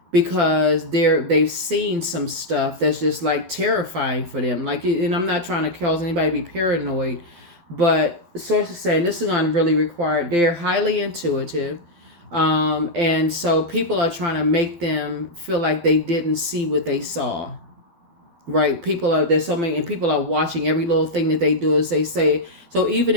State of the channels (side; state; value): left; late; 12 ms